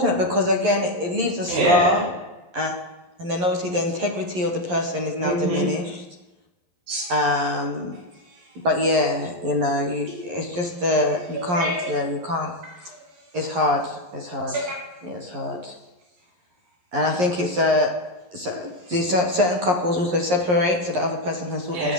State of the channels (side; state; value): left; late; 11 ms